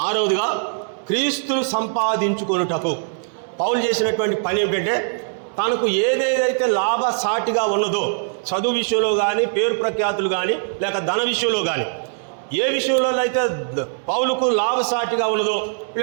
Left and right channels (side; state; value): left; silent; digital silence